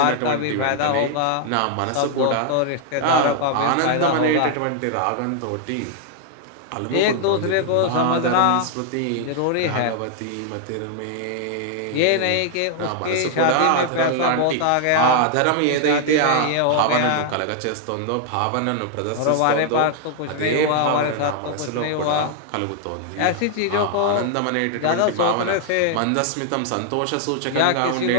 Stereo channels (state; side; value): different; both; correlation 0.00